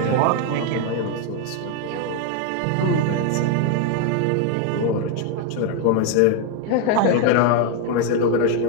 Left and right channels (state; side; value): different; both; correlation 0.01